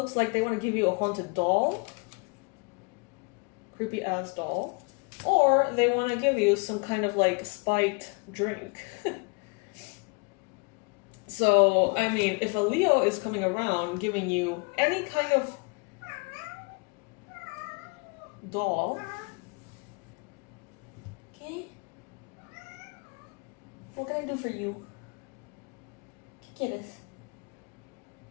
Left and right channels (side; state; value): right; quieter; 33.6 dB